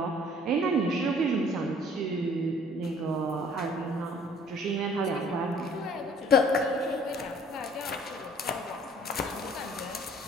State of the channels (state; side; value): normal; both; correlation 0.55